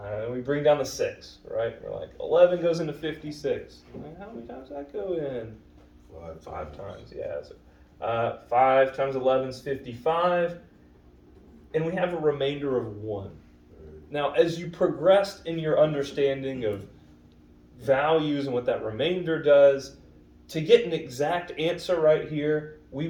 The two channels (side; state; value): both; identical; correlation 1.00